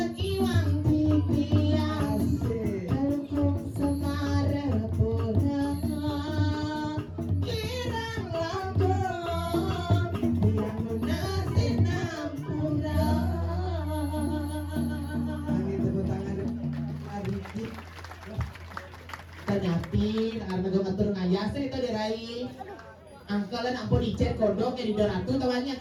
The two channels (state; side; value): identical; both; correlation 1.00